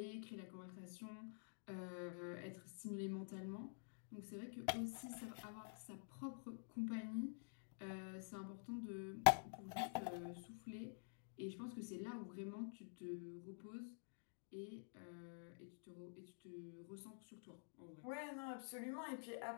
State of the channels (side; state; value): right; silent; digital silence